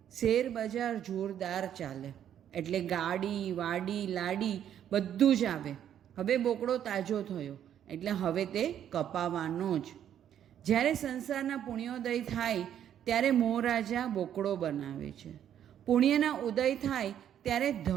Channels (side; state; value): left; quieter; 10.0 dB